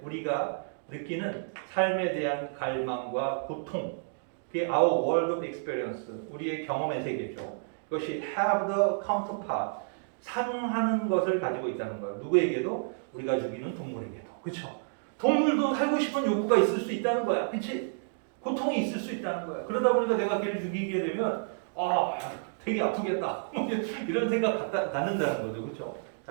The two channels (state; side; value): silent; left; digital silence